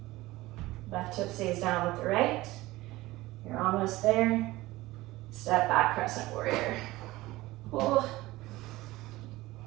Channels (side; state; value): left; quieter; 18.7 dB